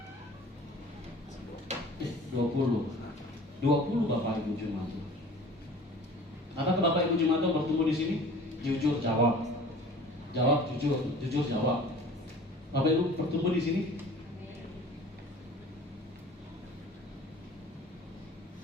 20 Bapak Ibu jemaat. Apakah Bapak Ibu jemaat bertemu di sini? Jujur jawab. Jawab jujur jawab. Bapak Ibu bertemu di sini?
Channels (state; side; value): normal; both; correlation 0.45